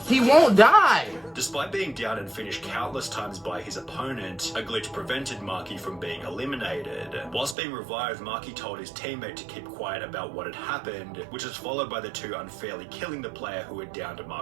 He won't die. Despite being down and finished countless times by his opponent, a glitch prevented Marky from being eliminated. Whilst being revived, Marky told his teammate to keep quiet about what had happened, which was followed by the two unfairly killing the player who had downed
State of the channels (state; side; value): drops out; left; at 7.6 s